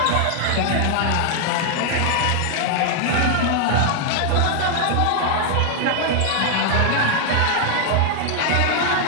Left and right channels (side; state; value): both; different; correlation 0.00